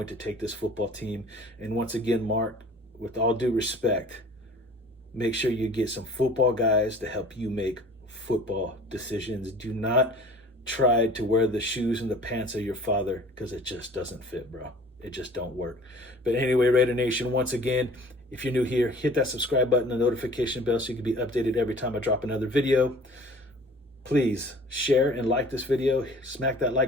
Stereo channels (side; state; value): both; normal; correlation 0.47